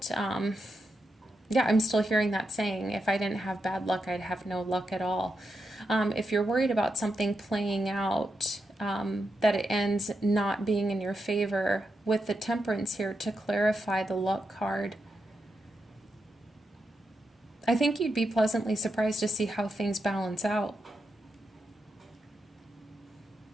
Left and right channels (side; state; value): both; normal; correlation 0.85